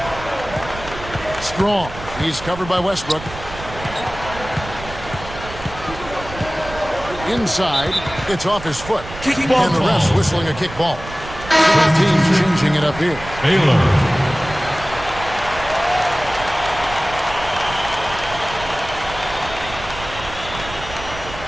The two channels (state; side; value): noise; right; rumble, 13 dB below the sound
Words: Strong. He's covered by Westbrook. Inside, it's off his foot. And the refs whistling a kick ball. Both teams changing it up here. Baylor.